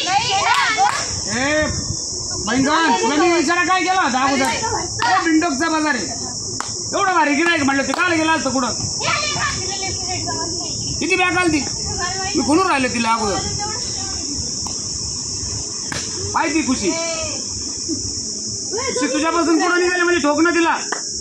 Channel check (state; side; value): identical; both; correlation 1.00